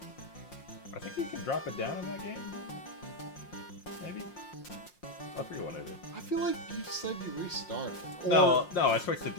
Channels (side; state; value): right; late; 5.6 ms